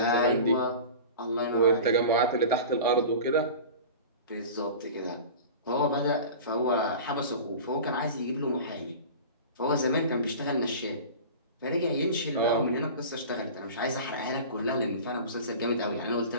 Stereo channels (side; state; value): both; inverted; correlation -0.35